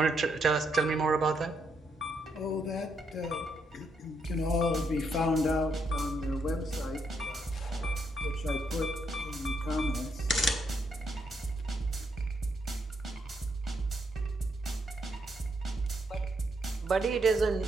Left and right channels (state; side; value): normal; both; correlation 0.77